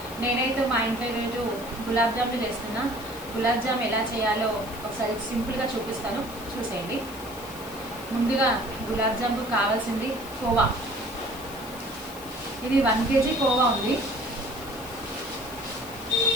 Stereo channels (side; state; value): left; noise; hiss, 16 dB below the sound